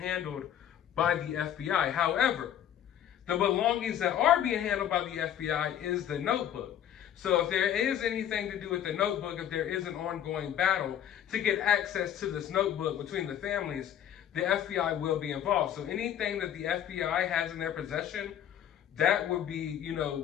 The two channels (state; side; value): quieter; right; 10.3 dB